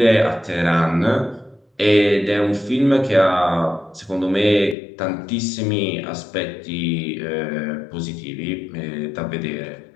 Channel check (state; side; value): drops out; right; at 4.8 s